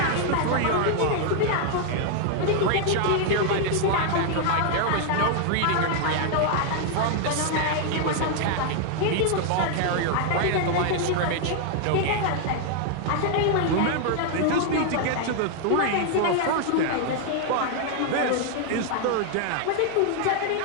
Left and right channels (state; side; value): different; both; correlation 0.00